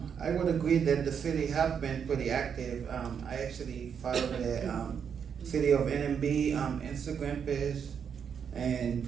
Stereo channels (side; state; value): left; quieter; 7.3 dB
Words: would agree that the city have been pretty active. I actually follow the City of NMB Instagram page, and